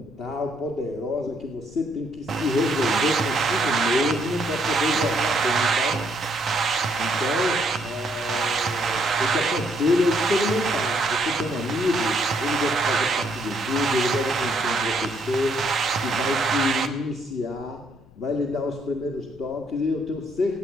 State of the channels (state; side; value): noise; left; rumble, 23 dB below the sound